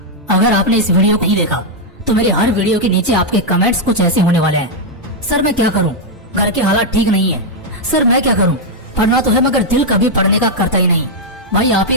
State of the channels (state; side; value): normal; both; correlation -0.01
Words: अगर आपने इस वीडियो को नहीं देखा तो मेरे हर वीडियो के नीचे आपके कमेंट्स कुछ ऐसे होने वाले हैं। सर मैं क्या करूं, घर के हालात ठीक नहीं है। सर मैं क्या करूं, पढ़ना तो है मगर दिल कभी पढ़ने का करता ही नहीं। भाई आप ही